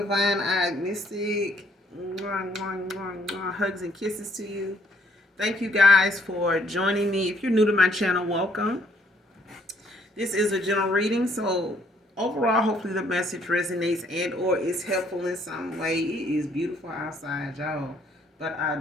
Eyed Mystic. Hugs and kisses to you. Thank you guys for joining me. If you're new to my channel, welcome. This is a general reading, so overall, hopefully the message resonates and or is helpful in some way. It is beautiful outside, y'all. But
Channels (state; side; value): normal; both; correlation 0.66